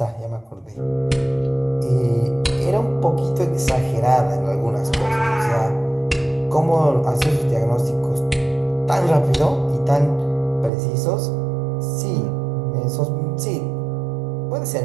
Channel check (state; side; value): drops out; left; at 10.7 s